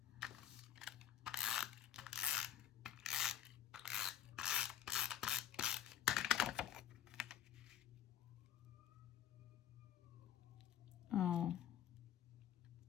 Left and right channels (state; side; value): quieter; right; 10.7 dB